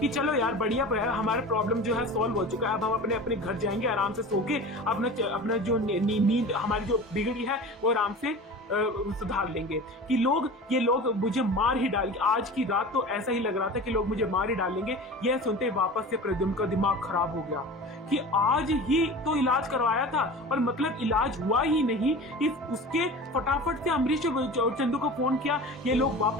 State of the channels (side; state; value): both; normal; correlation 0.35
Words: चलो यार बढ़िया, हमारा प्रॉब्लम जो है सॉल्व हो चुका है, अब हम अपने घर जाएंगे आराम से सो के अपना जो नींद हमारी जो बिगड़ी है वो आराम से सुधार लेंगे कि ये लोग मुझे मार ही डाल, आज की रात तो ऐसा ही लग रहा था कि लोग मुझे मार ही डालेंगे। यह सुनते वापस से प्रद्युम्न का दिमाग खराब हो गया कि आज ही तो इलाज करवाया था और मतलब इलाज हुआ ही नहीं। उसके फटाफट से अमरीश और चंदू को फोन किया। ये लोग